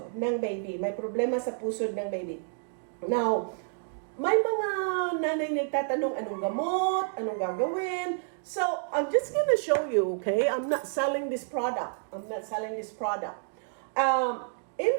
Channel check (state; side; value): silent; left; digital silence